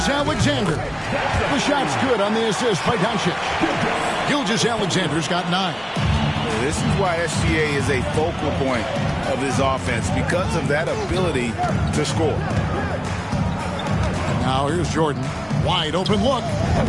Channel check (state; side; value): identical; both; correlation 1.00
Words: The shot's good on the assist by Doncic. Gilgeous-Alexander's got 9. This is why SGA is a focal point of this offense, because of that ability to score. Now here's Jordan. Wide open look.